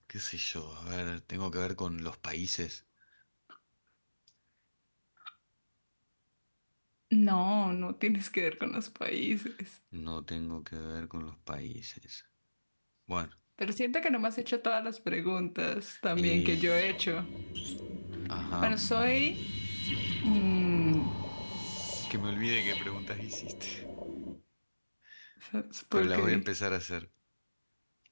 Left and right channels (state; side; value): inverted; both; correlation -1.00